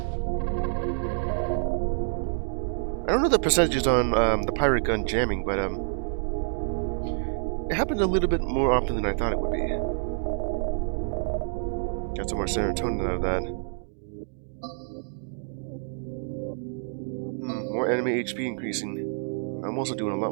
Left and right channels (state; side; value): silent; left; digital silence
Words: I don't know the percentages on the pirate gun jamming, but it happened a little bit more often than I thought it would be. Got some more serotonin out of that. More more enemy HP increasing. I'm also doing a lot